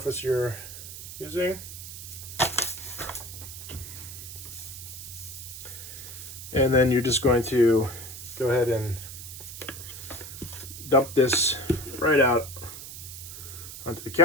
you're using. And then you're just going to go ahead and dump this right out onto the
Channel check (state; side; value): noise; right; hiss, 11 dB below the sound